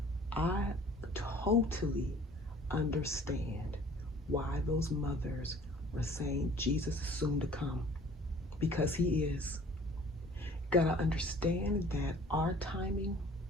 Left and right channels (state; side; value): normal; both; correlation 0.51